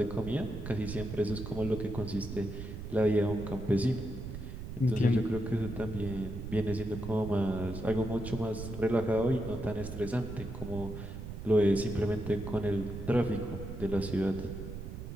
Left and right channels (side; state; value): right; noise; rumble, 8 dB below the sound